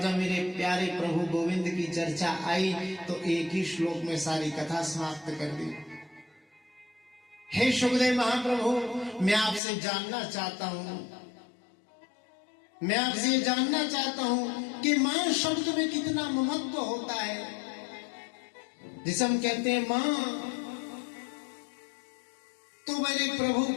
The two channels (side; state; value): right; drops out; at 9.6 s